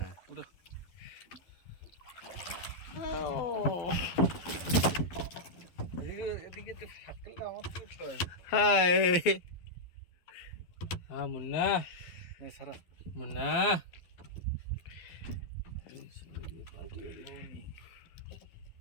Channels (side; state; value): right; late; 12 ms